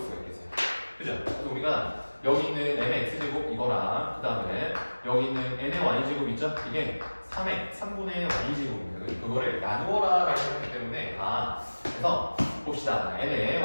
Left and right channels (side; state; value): both; inverted; correlation -1.00